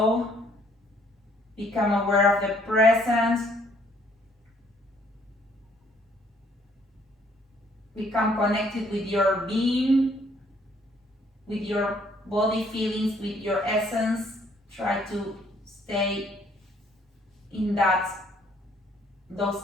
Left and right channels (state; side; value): normal; both; correlation 0.64